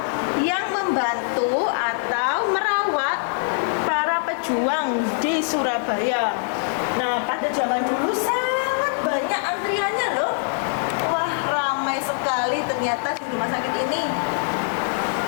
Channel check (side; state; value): right; silent; 63 dB below the other